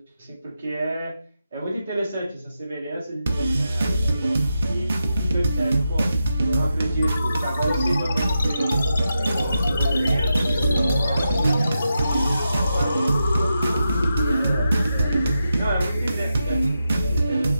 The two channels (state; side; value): inverted; both; correlation -0.87